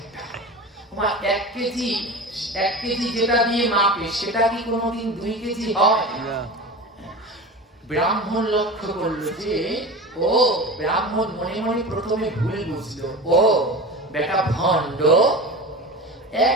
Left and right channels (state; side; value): normal; both; correlation 0.30